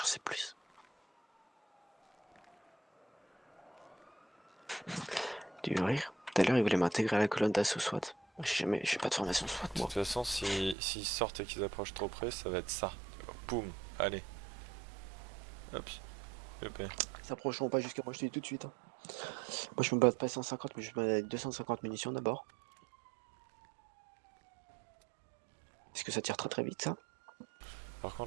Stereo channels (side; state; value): left; drops out; at 10.8 s